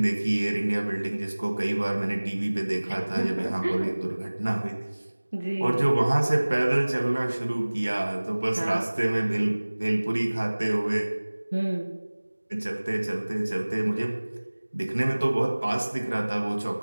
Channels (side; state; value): both; inverted; correlation -1.00